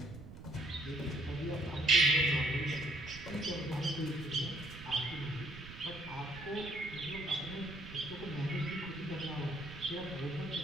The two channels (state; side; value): noise; right; rumble, 14 dB below the sound